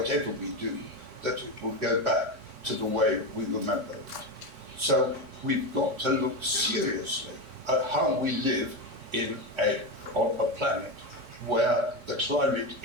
we do, that it will go back to the way we remember it. So we've got to look seriously at how we live on a planet where the climate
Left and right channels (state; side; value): late; left; 3.6 ms